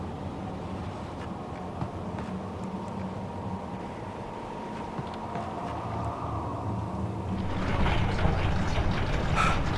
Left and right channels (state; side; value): identical; both; correlation 1.00